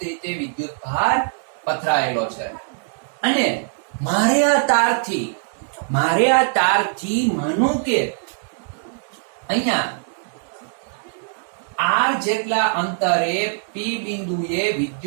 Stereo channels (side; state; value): left; silent; digital silence